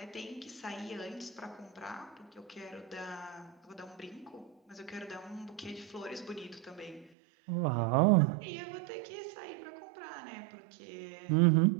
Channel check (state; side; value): drops out; left; at 7.1 s